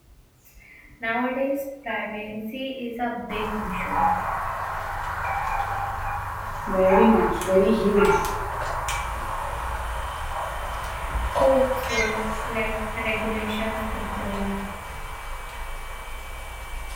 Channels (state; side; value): identical; both; correlation 1.00